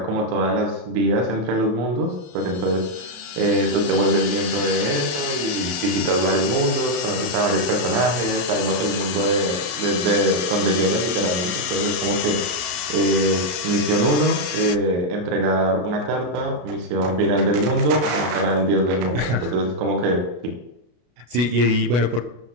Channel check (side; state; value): left; late; 33 ms